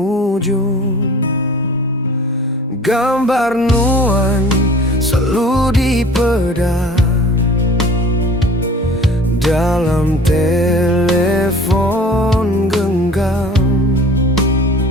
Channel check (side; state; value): both; normal; correlation 0.46